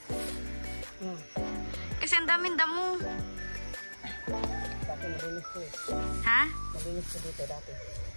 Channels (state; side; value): inverted; both; correlation -1.00